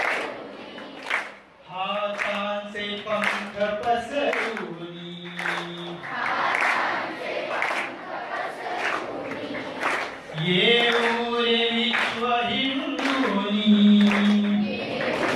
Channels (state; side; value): identical; both; correlation 1.00